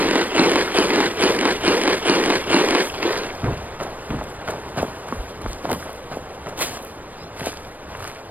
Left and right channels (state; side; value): late; left; 0.081 ms